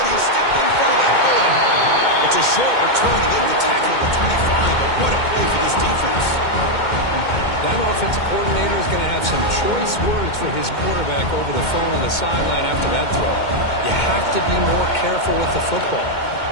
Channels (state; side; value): late; right; 2.2 ms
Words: He stepped in front of that bullet. It's a short return to get the tackle at the 25, but what a play for this defense. That offensive coordinator is going to have some choice words for his quarterback over the phone on the sideline after that throw. You have to be more careful with the football.